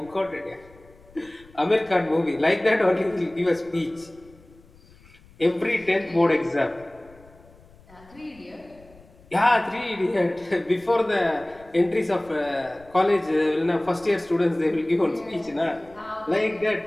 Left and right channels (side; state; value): left; noise; rumble, 26 dB below the sound